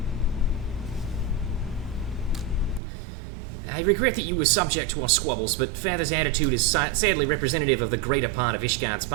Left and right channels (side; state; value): left; drops out; at 2.8 s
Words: I regret that you were subject to our squabbles, but Father's attitude is sadly representative of the greater part of Ishgard's